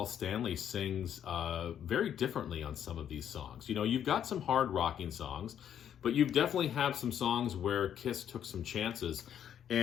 Stanley sings very differently on some of these songs. You've got some hard rocking songs, but you definitely have some songs where Kiss took some chances.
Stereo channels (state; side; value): quieter; right; 9.5 dB